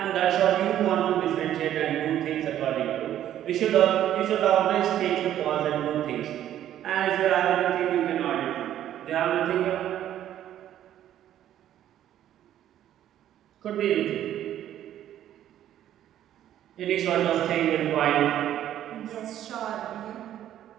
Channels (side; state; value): left; quieter; 11.6 dB